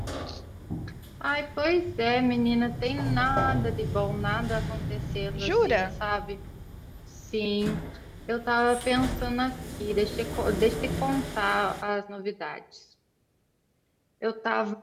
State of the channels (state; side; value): identical; both; correlation 1.00